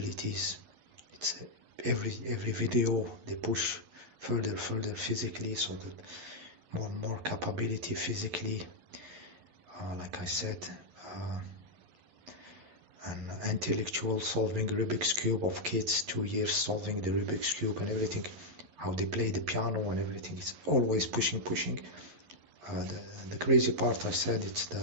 It's every video they push further physically, so that more and more capability physically. Like I said, an intellectual solving Rubik's Cube of kids, 2 years solving the Rubik's Cube and everything, how they play the piano and everything. It's always pushing. The crazy part, I said, it's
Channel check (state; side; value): late; left; 11 ms